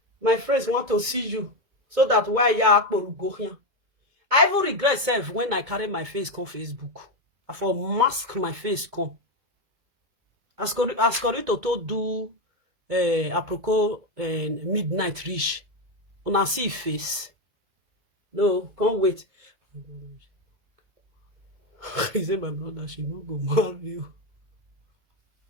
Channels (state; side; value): late; left; 2.2 ms